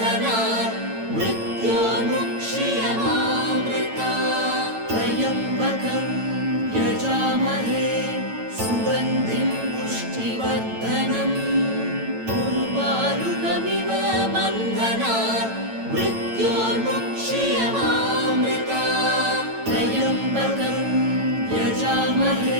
मृत्योर्मुक्ष्यमामृतात् त्र्यम्बकं यजामहे सुगन्धिं पुष्टिवर्धनम् उर्वारुकमिव बन्धनात् मृत्योर्मुक्ष्यमामृतात् त्र्यम्बकं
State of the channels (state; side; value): late; left; 9.0 ms